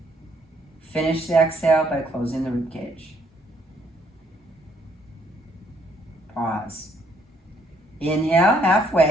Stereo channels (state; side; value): normal; both; correlation 0.67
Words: Finish the exhale by closing the rib cage. Pause. Inhale